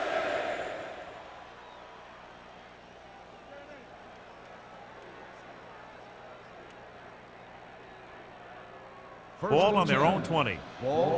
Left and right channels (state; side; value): identical; both; correlation 1.00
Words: Ball on their own 20.